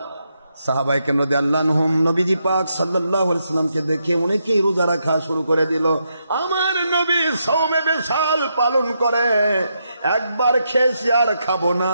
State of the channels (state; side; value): inverted; both; correlation -0.81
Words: সাহাবায়ে কেরাম রাদিয়াল্লাহু আনহুম নবীজি পাক সাল্লাল্লাহু আলাইহি ওয়াসাল্লামকে দেখে অনেকেই রোজা রাখা শুরু করে দিল। আমার নবী সওমে বিশাল পালন করে, একবার খেয়েছি আর খাবো না,